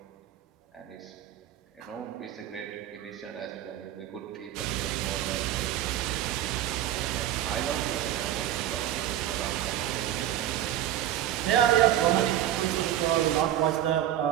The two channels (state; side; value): quieter; left; 12.0 dB